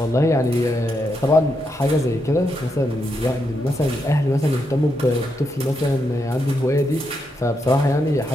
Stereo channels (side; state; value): both; normal; correlation 0.82